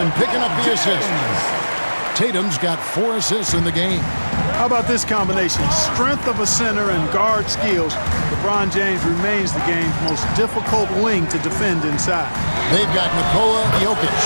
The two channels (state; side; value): inverted; both; correlation -1.00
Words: picking up the assist. Tatum's got 4 assists in the game. How about this combination? Strength of a center and guard skills. LeBron James remains the game's most difficult wing to defend inside. They've got Nikola Jokic.